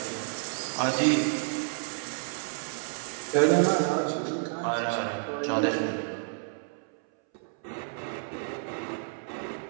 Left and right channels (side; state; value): left; silent; 58 dB below the other